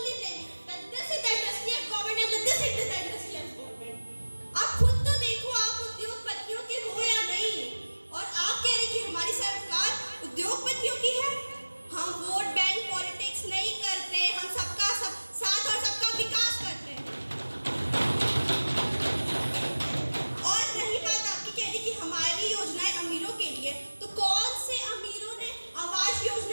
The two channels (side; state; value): both; inverted; correlation -1.00